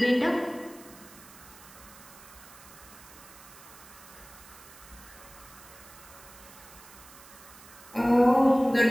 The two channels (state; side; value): noise; right; hiss, 20 dB below the sound